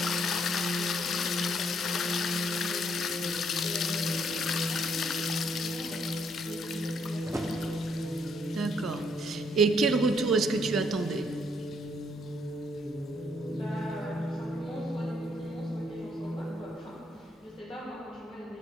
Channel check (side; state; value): both; normal; correlation 0.70